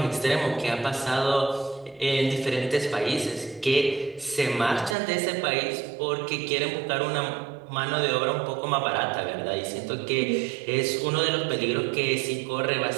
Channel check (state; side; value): drops out; left; at 5.0 s